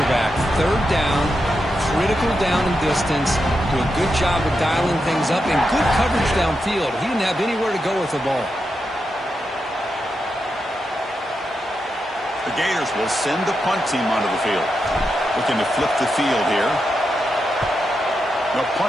third down, critical down and distance, do a good job of dialing things up, and good coverage downfield. He didn't have anywhere to go with the ball. The Gators will send the punt team onto the field. Looking to flip the field here. They'll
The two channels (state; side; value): normal; both; correlation 0.86